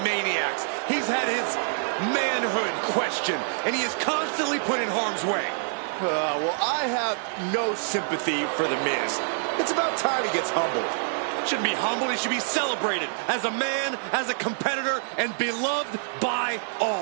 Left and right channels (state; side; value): silent; left; digital silence